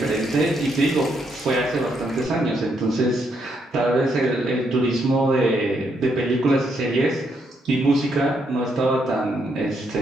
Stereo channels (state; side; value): normal; both; correlation 0.76